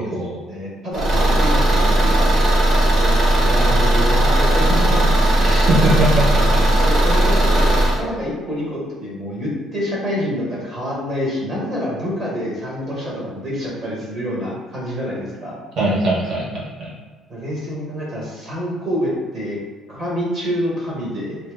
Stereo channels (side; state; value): both; normal; correlation 0.80